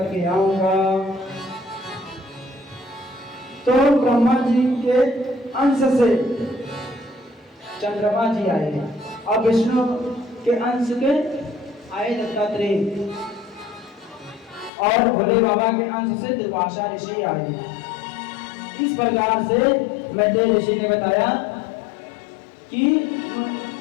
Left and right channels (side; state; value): right; drops out; at 14.7 s